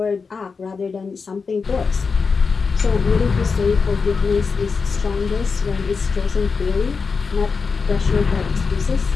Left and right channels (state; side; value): quieter; right; 5.0 dB